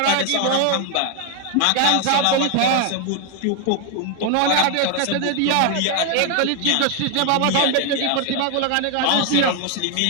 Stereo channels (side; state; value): both; different; correlation 0.01